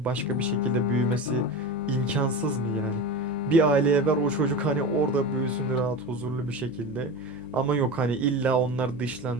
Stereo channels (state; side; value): noise; right; hum, 24 dB below the sound